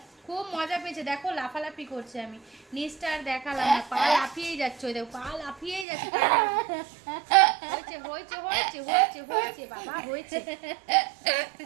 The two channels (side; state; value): left; drops out; at 5.9 s